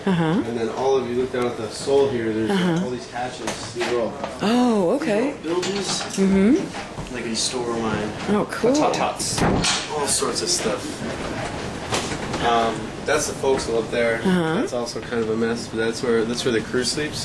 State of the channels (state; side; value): identical; both; correlation 1.00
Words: And then all of you look down at the sole here. There's all these hatches. These are all okay. buildings. Like a store of mine. Oh, cool. Tots. All sorts of stuff. That's the forecastle up there. That's also kind of a mess, but that's where the crew sleeps.